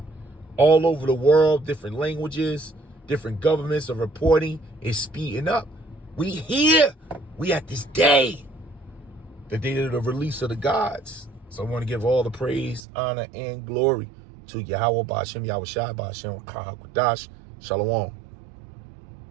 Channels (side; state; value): left; drops out; at 12.8 s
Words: all over the world. Different languages, different governments are reporting. It's speeding up. We here. We at this day. The day of the release of the gods. So I want to give all the praise, honor, and glory to Yahweh Bashem Yahushua Bashem Kahakadash. Shalom.